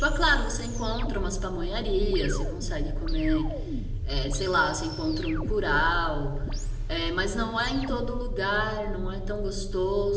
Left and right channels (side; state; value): both; identical; correlation 1.00